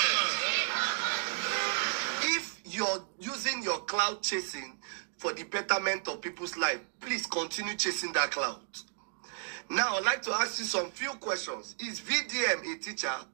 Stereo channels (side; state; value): left; silent; digital silence